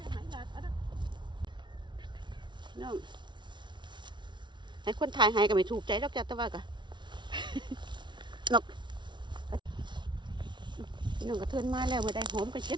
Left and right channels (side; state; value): left; late; 0.23 ms